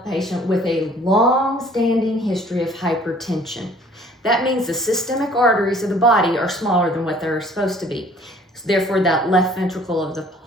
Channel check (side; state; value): both; normal; correlation 0.55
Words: patient with a long-standing history of hypertension. That means the systemic arteries of the body are smaller than what they're supposed to be. So therefore, that left ventricle of the